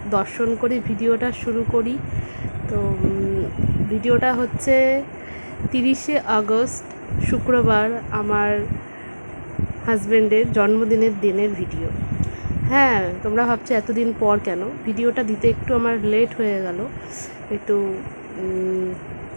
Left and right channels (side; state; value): both; inverted; correlation -1.00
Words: দর্শন করে ভিডিওটা শুরু করি। তো ভিডিওটা হচ্ছে 30শে আগস্ট শুক্রবার, আমার হাজব্যান্ডের জন্মদিনের দিনের ভিডিও। হ্যাঁ, তোমরা ভাবছো এতদিন পর কেন ভিডিওটা দিতে, একটু আমার লেট হয়ে গেল, একটু